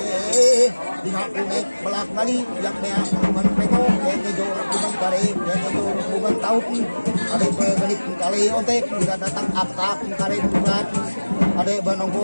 Dihak unek belak nali yak mea bukan peko yang kejo bukan kare yang kejo bukan tauti ada peganit kali ontek tidak datang aptak kare bukan ada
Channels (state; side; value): inverted; both; correlation -1.00